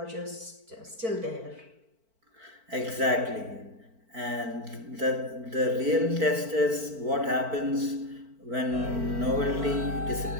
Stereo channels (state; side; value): late; left; 4.5 ms